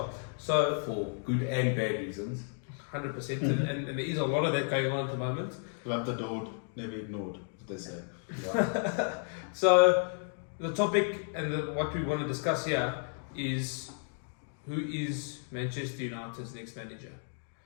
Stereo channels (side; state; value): right; silent; 56 dB below the other